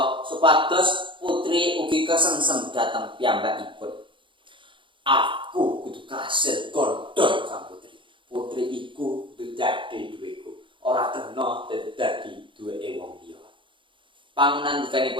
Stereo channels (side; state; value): left; late; 0.24 ms